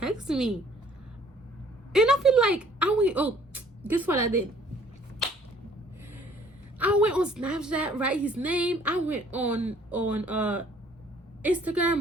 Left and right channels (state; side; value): normal; both; correlation 0.58